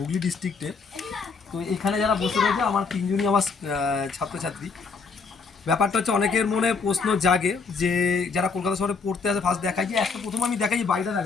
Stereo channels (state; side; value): quieter; right; 4.8 dB